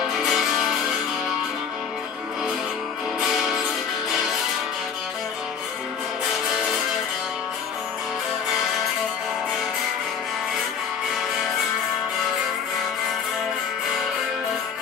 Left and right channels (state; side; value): quieter; right; 6.9 dB